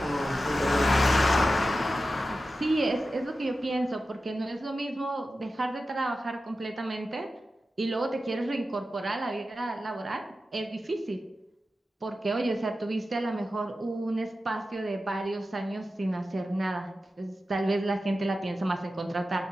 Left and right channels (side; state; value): both; normal; correlation 0.92